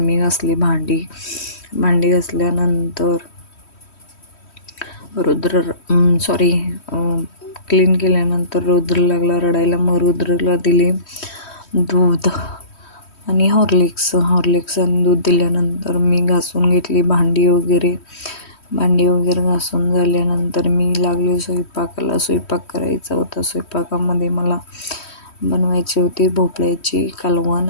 घासली भांडी घासल्यानंतर क्लीन केल्यानंतर रुद्र लागला रडायला. मग रुद्रला दिले दूध आणि हॉर्लिक्स आणि दूध दिल्यानंतर मी घासून घेतली भांडी वगैरे घासून झाल्यानंतर मी लागले स्वयंपाकाला. स्वयंपाक करायचा होता. स्वयंपाकामध्ये मला बनवायचे होते भोपळ्याची कालवण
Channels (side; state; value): right; late; 3.1 ms